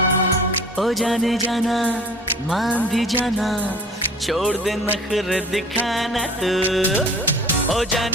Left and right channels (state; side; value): normal; both; correlation 0.46